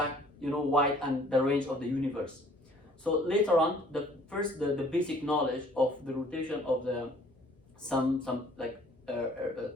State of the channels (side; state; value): both; normal; correlation 0.56